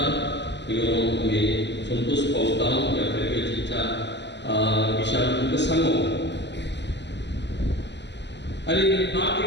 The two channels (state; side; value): late; right; 0.51 ms